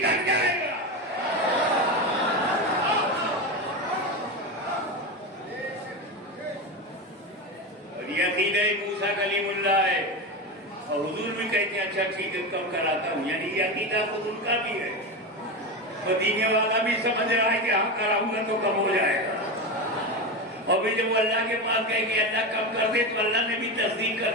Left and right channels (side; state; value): both; normal; correlation 0.19